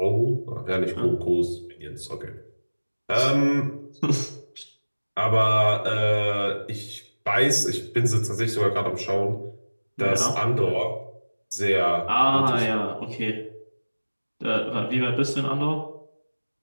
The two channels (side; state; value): both; inverted; correlation -1.00